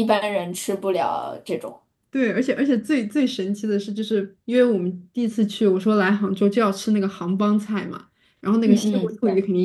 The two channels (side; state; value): both; identical; correlation 1.00